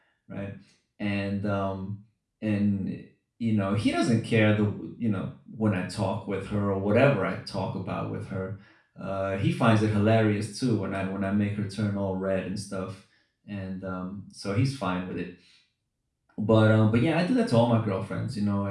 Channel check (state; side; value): identical; both; correlation 1.00